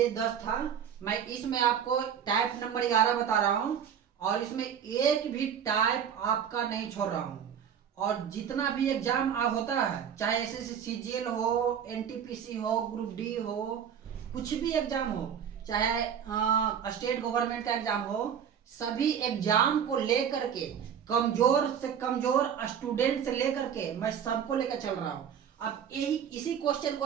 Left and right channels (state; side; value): quieter; left; 8.3 dB